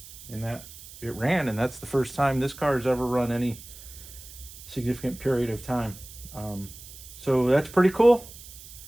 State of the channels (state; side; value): noise; right; hiss, 16 dB below the sound